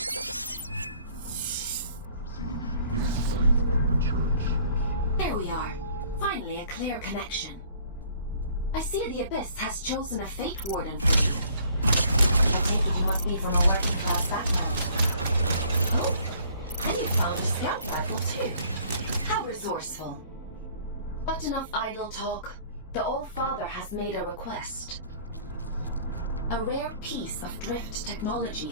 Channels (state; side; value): inverted; both; correlation -0.57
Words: In spite of the church. There we are. Finally a clear connection. I see the Abyss has chosen a Fate Warden for you. I take it you must be from a working class background. Oh, and you found a scout rifle too. How resourceful. But enough idle talk. The All-Father has made a request. A rare piece of drift technology